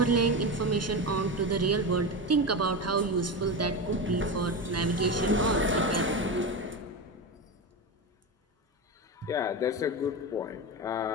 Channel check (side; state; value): both; normal; correlation 0.20